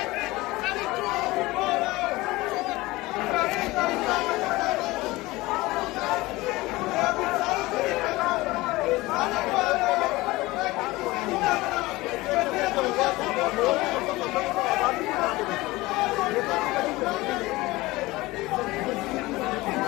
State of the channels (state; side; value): quieter; right; 20.2 dB